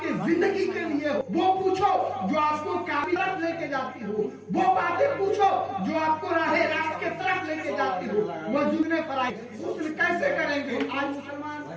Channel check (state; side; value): identical; both; correlation 1.00